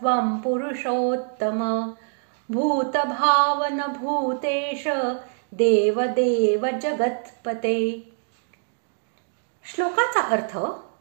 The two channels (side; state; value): left; silent; 61 dB below the other